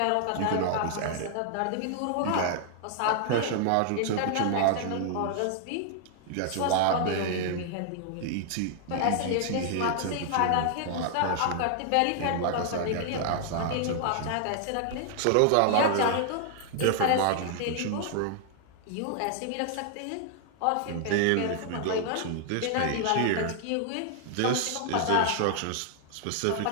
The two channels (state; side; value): different; both; correlation 0.00